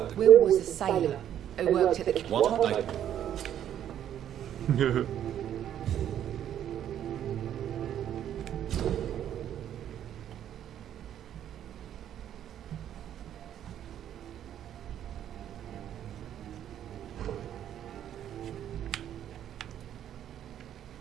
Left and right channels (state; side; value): quieter; left; 10.5 dB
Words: Will was a sailor who worked at the... What?